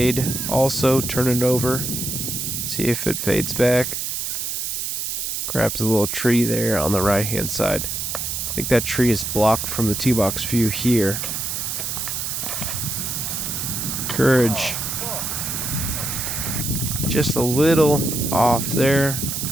also turn it over. See if it fades back. Grabs a little tree there on the right hand side. I think that tree is blocked from the tee box view here. Courage. Just a little off there.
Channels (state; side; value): noise; right; hiss, 3 dB below the sound